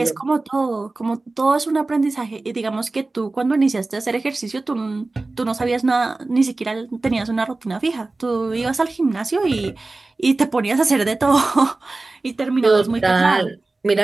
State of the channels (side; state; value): left; quieter; 3.3 dB